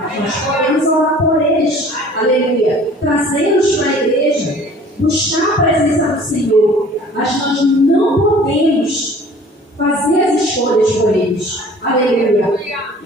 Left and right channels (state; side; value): normal; both; correlation 0.49